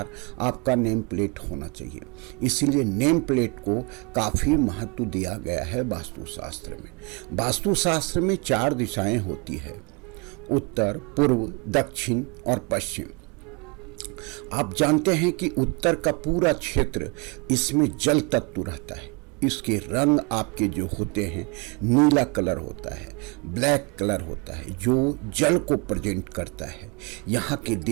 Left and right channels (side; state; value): left; quieter; 29.8 dB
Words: आपका नेम प्लेट होना चाहिए। इसीलिए नेम प्लेट को काफ़ी महत्व दिया गया है वास्तुशास्त्र में। वास्तुशास्त्र में 4 दिशाएं होती है: उत्तर, पूर्व, दक्षिण और पश्चिम। आप जानते हैं कि उत्तर का पूरा क्षेत्र, इसमें जल तत्व रहता है। इसके रंग आपके जो होते हैं, नीला कलर होता है, ब्लैक कलर होता है, जो जल को प्रेजेंट करता है। यहाँ के